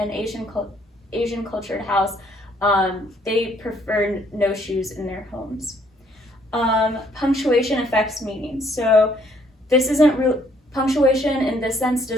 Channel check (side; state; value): both; normal; correlation 0.66